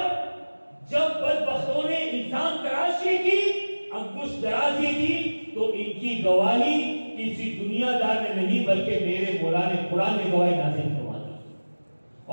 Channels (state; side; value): inverted; both; correlation -1.00